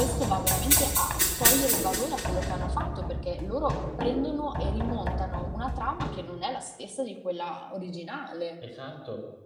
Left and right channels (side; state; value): both; identical; correlation 1.00